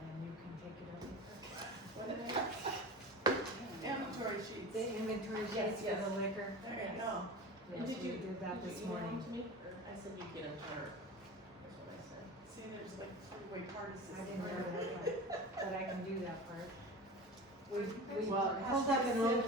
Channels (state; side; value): normal; both; correlation 0.32